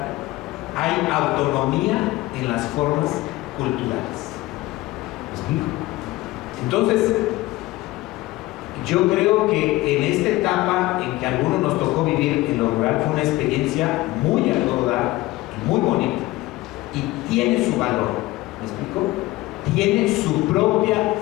hay autonomía en las formas culturales. explico? Entonces, yo creo que en esta etapa en que a algunos nos tocó vivir en lo rural fue una experiencia muy a todo dar y muy bonita. Y tiene su valor, ¿me explico? Tiene su propia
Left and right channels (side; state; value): right; quieter; 18.8 dB